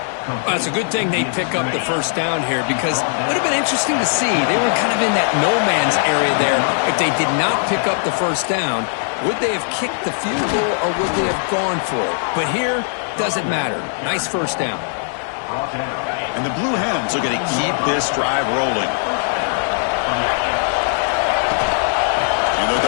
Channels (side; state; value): right; silent; digital silence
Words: Well, it's a good thing they pick up the 1st down here, because it would have been interesting to see. They were kind of in that no-man's area there. If they did not pick up the 1st down, would they have kicked the field goal or would they have gone for it? But here, doesn't matter. Nice 1st down. And the Blue Hens are going to keep this drive rolling.